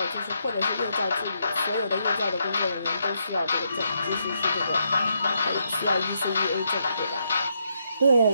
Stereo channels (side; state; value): both; inverted; correlation -0.78